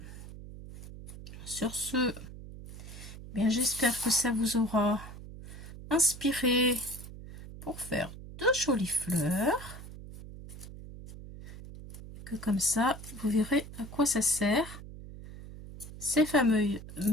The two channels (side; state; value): right; noise; hum, 13 dB below the sound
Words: sur ce, bien j'espère que ça vous aura inspiré pour faire de jolies fleurs. Et que comme ça, vous verrez à quoi ça sert. Ces